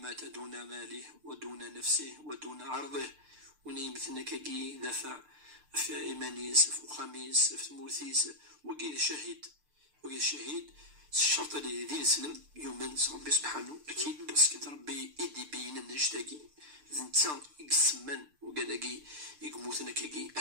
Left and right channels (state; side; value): late; left; 6.7 ms